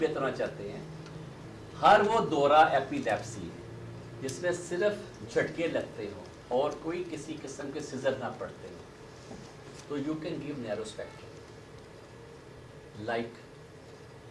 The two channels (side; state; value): both; identical; correlation 1.00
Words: چاہتے ہیں, ہر وہ دورہ ایپیلیپسی جس میں صرف جھٹکے لگتے ہوں اور کوئی کسی قسم کے سیزر نہ پڑتے ہوں, تو you can give narrow spectrum like